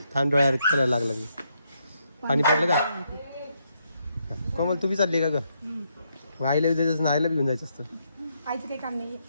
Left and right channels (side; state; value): both; inverted; correlation -0.77